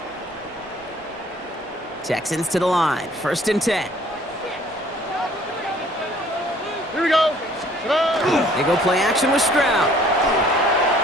Texans to the line, 1st and 10. Here we go. Today. They go play action with Stroud.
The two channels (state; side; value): normal; both; correlation 0.57